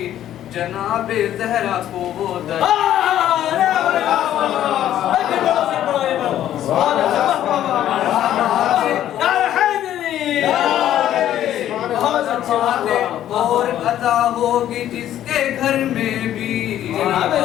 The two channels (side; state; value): right; quieter; 11.8 dB